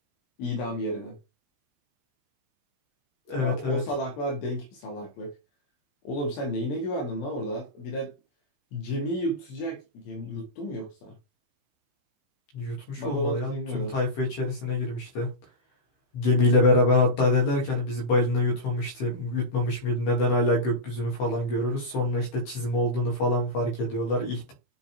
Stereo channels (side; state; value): right; late; 15 ms